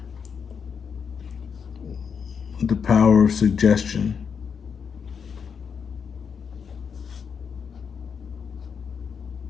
The power of suggestion.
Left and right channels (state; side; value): quieter; right; 6.5 dB